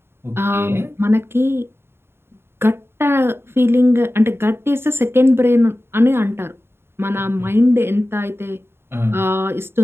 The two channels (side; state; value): left; late; 0.11 ms